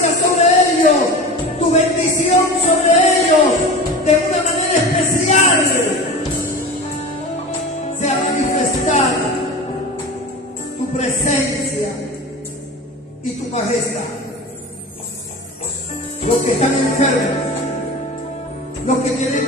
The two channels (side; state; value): both; normal; correlation 0.32